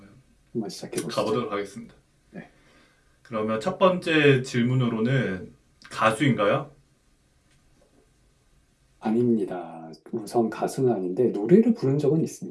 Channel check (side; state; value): both; identical; correlation 1.00